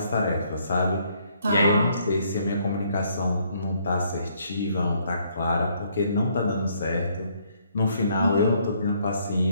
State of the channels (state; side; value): inverted; both; correlation -0.68